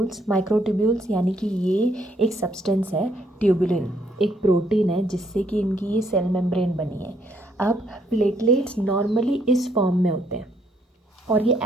यानी कि ये एक सब्सटेंस है, ट्यूबुलिन एक प्रोटीन है जिससे कि इनकी ये सेल मेम्ब्रेन बनी है। अब प्लेटलेट्स नॉर्मली इस फॉर्म में होते हैं और ये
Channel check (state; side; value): normal; both; correlation 0.70